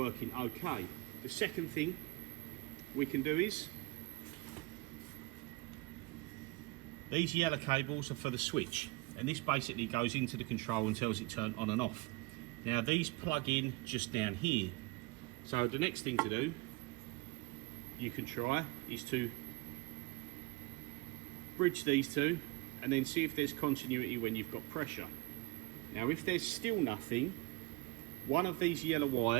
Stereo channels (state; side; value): quieter; left; 23.4 dB